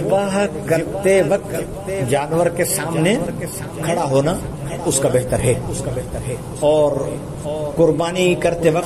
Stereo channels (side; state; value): both; identical; correlation 1.00